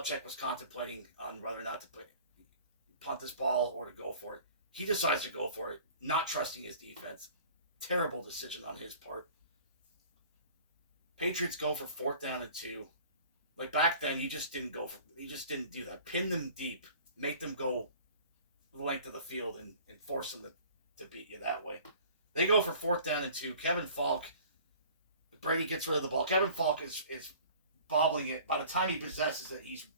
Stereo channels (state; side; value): inverted; both; correlation -0.47